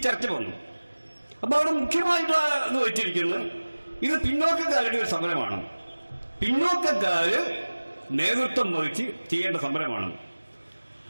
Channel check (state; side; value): inverted; both; correlation -1.00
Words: ചർച്ച വന്നു. അപ്പോൾ അവിടെ മുഖ്യമായിട്ട് വെച്ചിരിക്കുന്നത് ഇത് പിന്നോക്കക്കാരുടെ ഒരു സമരമാണ്, പിന്നോക്കക്കാര് നേതൃത്വം വഹിച്ച് ചെയ്യേണ്ട സമരമാണ്.